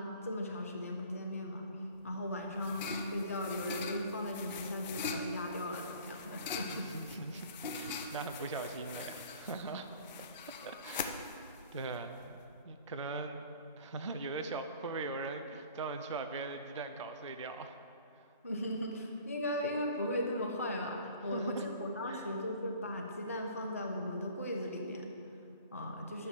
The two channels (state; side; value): inverted; both; correlation -0.49